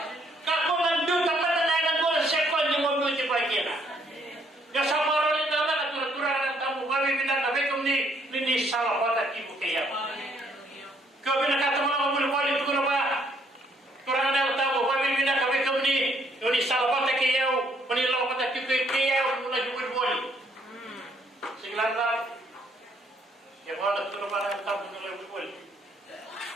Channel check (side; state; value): both; normal; correlation 0.68